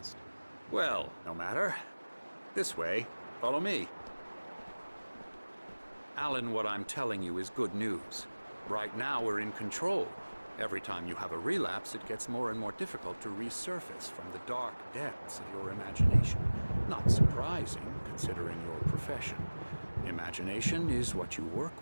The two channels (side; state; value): both; inverted; correlation -1.00